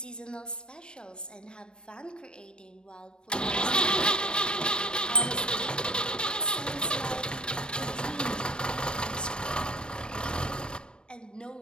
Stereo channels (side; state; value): right; late; 0.053 ms